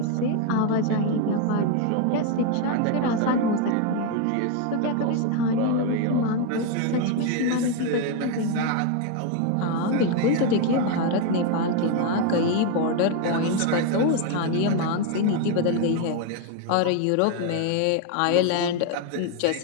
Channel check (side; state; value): both; different; correlation 0.01